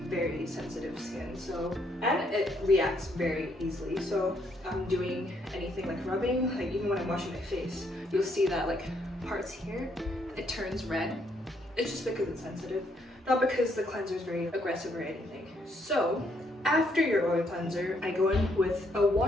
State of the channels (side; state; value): both; normal; correlation 0.72